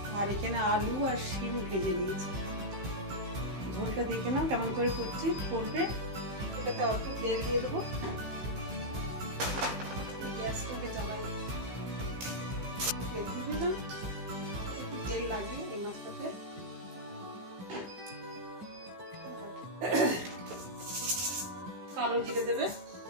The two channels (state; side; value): late; left; 15 ms